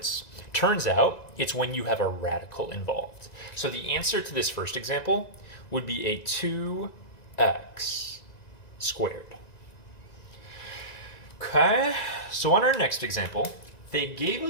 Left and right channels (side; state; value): right; late; 1.9 ms